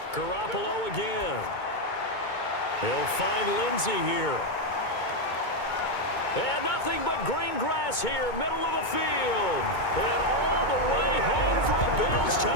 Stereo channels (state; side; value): late; right; 2.2 ms